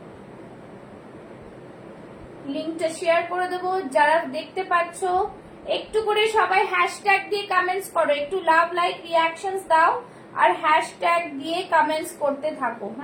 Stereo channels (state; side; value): identical; both; correlation 1.00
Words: লিংকটা শেয়ার করে দেবো। যারা দেখতে পাচ্ছ একটু করে সবাই হ্যাশট্যাগ দিয়ে কমেন্টস করো, একটু লাভ লাইক রিঅ্যাকশনস দাও আর হ্যাশট্যাগ দিয়ে কমেন্টস করতে থাকো।